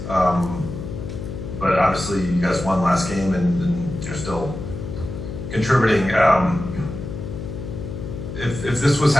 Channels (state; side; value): noise; left; hum, 7 dB below the sound